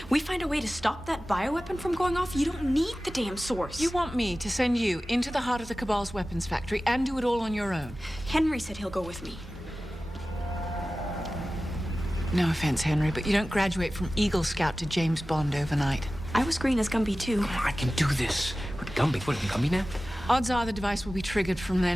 We find a way to stop that bioweapon from going off. You don't need the damn source. You want me to send you into the heart of the Cabal's weapons factory and do it all on your own? Henry said he'll go with me. No offense, Henry, but you don't graduate from Eagle Scout to James Bond overnight. I was green as Gumby, too. I can do this. What, Gumby? What, Gumby now? Odds are the device will be triggered from their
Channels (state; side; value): normal; both; correlation 0.96